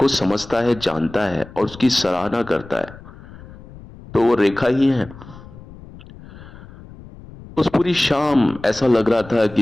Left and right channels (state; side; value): noise; left; rumble, 18 dB below the sound